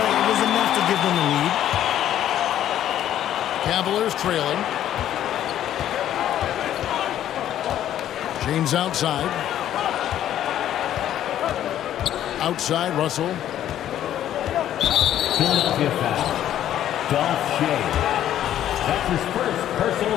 it was enough to give them the lead. Cavaliers trailing. James outside. Outside, Russell. Philadelphia foul. Dolph Shea. That's his first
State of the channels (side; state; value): right; quieter; 11.5 dB